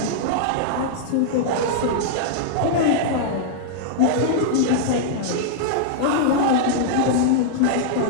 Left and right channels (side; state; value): both; different; correlation -0.01